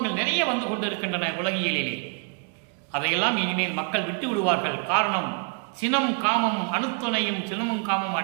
நிறைய வந்து கொண்டு இருக்கின்றன உலகியலிலே. அதையெல்லாம் இனிமேல் மக்கள் விட்டு விடுவார்கள். காரணம், சினம் காமம் அணுத்துணையும் சினமும் காமம்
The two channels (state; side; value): quieter; left; 37.4 dB